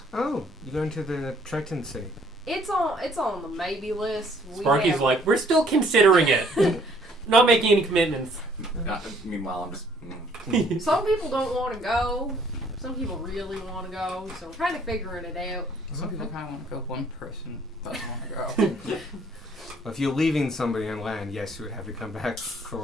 Oh, you're going to the Triton City. it's on the maybe list. Sparky's like, we're still considering it. Not making any commitments. Meanwhile, I'm just. Some people don't want to go. Some people really want to go. So we're kind of figuring it out. Some people kind of want to go. One person doesn't want to go. If you're leaving somebody on land, yes, you would have to come back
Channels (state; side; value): normal; both; correlation 0.61